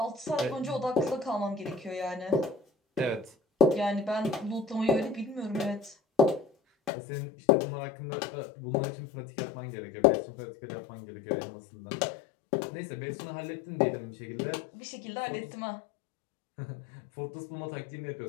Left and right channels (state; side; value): drops out; right; at 6.9 s